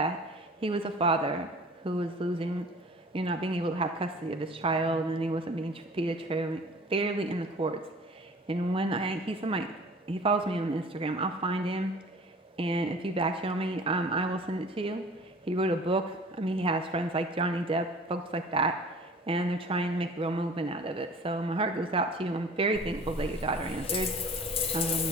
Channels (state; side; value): normal; both; correlation 0.45